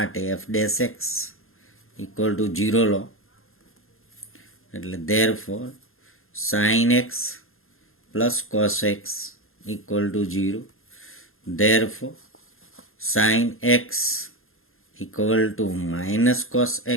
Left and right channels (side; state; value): right; late; 0.61 ms